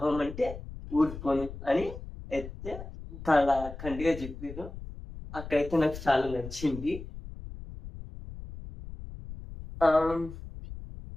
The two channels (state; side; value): noise; left; rumble, 12 dB below the sound